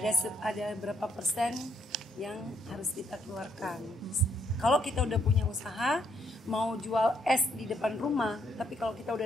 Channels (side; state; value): both; normal; correlation 0.72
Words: berapa persen yang harus kita keluarkan. Kalau kita udah punya usaha, mau jual es di depan rumah, tapi kalau kita